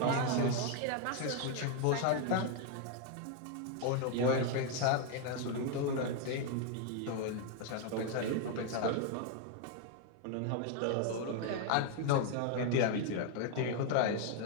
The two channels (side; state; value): both; different; correlation 0.00